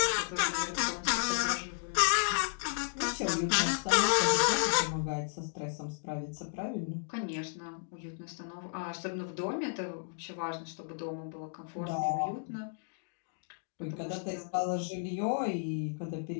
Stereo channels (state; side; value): silent; right; digital silence